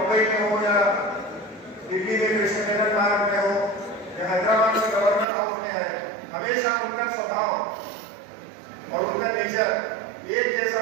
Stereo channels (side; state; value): left; drops out; at 5.2 s